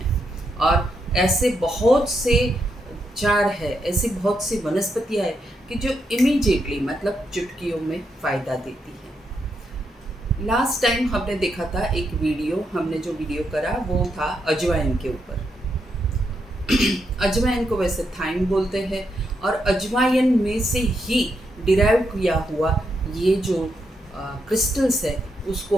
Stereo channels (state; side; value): normal; both; correlation 0.81